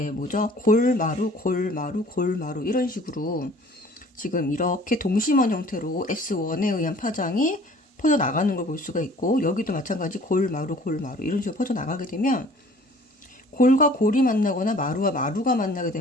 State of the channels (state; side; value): normal; both; correlation 0.51